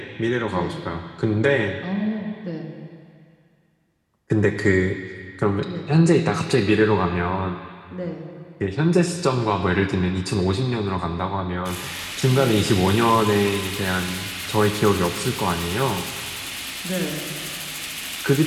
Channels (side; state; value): both; identical; correlation 1.00